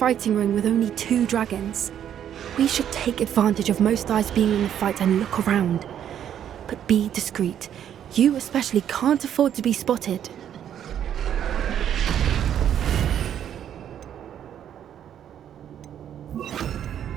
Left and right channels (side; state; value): left; quieter; 9.8 dB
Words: ring with only 2 dragons. We should take advantage of most eyes being in the fight and look around. But be discreet. You especially can't afford to be spotted.